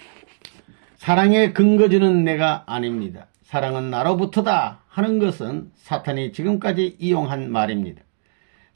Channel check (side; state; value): left; silent; digital silence